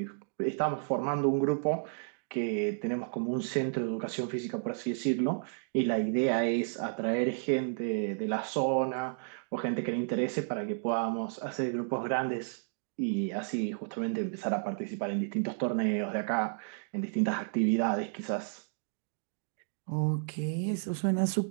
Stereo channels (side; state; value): left; silent; digital silence